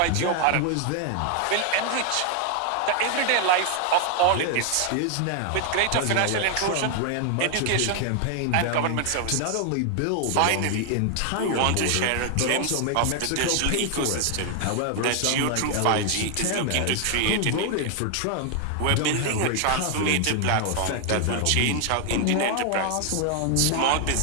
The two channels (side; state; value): both; different; correlation 0.00